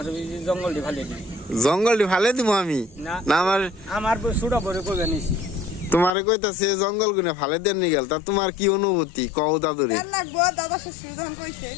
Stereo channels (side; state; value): right; drops out; at 6.1 s